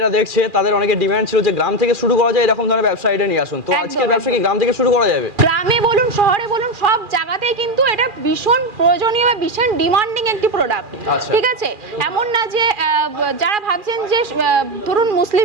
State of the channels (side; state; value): left; late; 2.4 ms